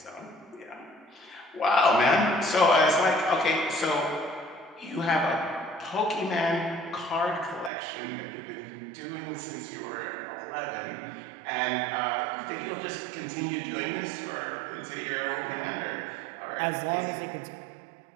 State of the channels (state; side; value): drops out; left; at 7.7 s